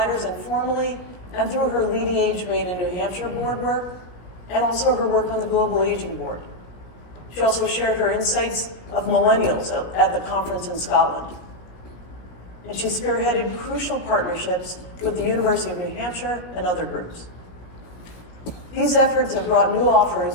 informally and through her LeadingAge Maine and New Hampshire board work, and also her work on the Global Aging Board. She also shared her insights of millennials at the conference in Scotland. And she spearheaded crucial partnerships with the University of New Hampshire and other groups. These efforts have brought new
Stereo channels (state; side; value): late; right; 17 ms